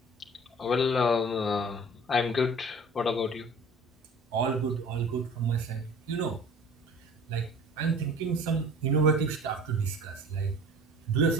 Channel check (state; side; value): normal; both; correlation 0.45